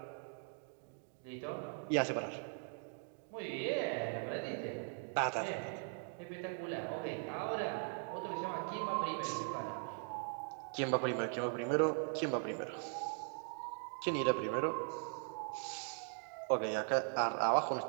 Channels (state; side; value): silent; left; 51 dB below the other